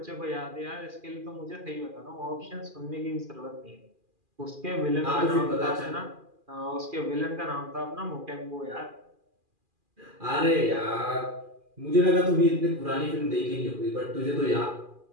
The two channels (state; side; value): late; left; 2.4 ms